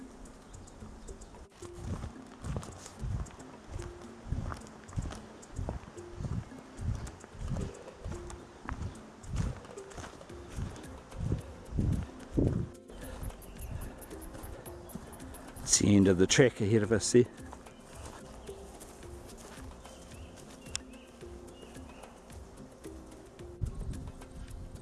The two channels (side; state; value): both; identical; correlation 1.00